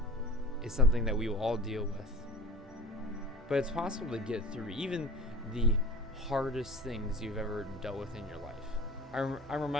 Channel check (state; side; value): normal; both; correlation 0.40